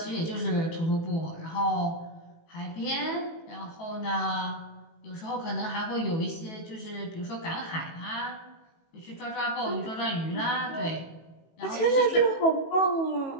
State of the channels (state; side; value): late; right; 18 ms